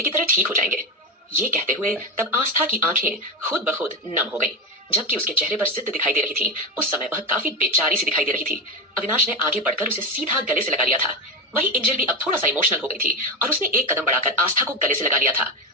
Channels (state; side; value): normal; both; correlation 0.16